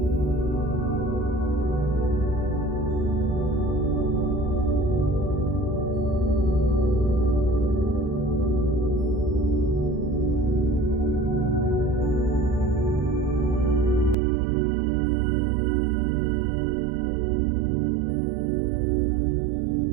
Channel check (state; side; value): drops out; left; at 14.2 s